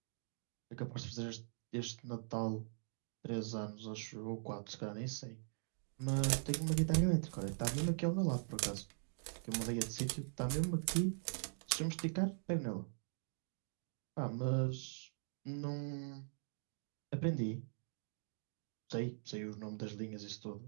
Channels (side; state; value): left; silent; digital silence